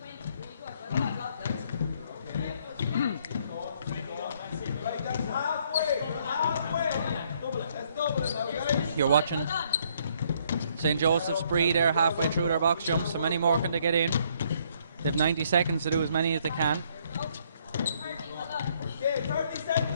You're watching St. Joseph's Bree there halfway through their box jumps. So many more can they get in. They have 90 seconds to do as many as they can. Okay, 30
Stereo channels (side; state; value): both; inverted; correlation -0.67